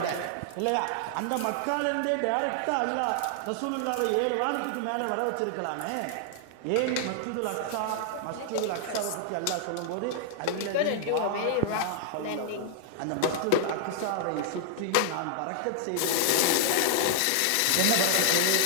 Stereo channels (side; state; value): both; different; correlation 0.00